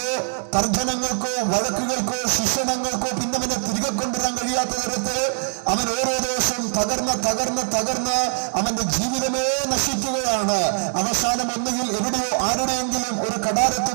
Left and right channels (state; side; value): silent; left; digital silence